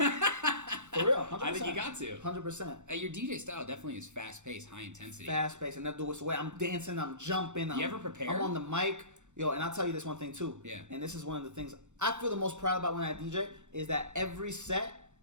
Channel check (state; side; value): late; left; 0.84 ms